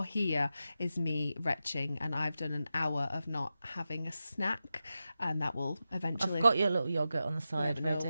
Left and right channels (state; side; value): inverted; both; correlation -0.91